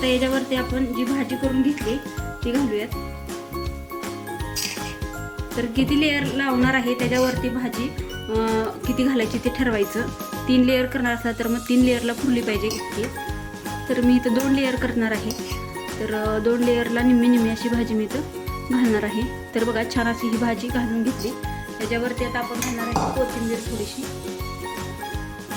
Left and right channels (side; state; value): both; identical; correlation 1.00